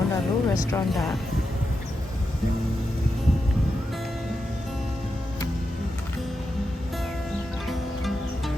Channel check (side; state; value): both; normal; correlation 0.87